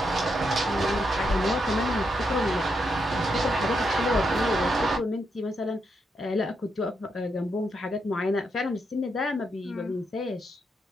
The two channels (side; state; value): both; normal; correlation 0.81